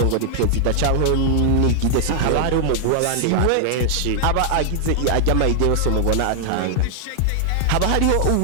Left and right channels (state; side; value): different; both; correlation 0.00